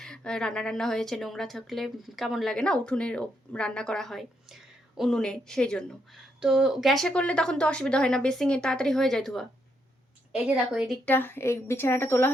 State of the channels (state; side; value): normal; both; correlation 0.78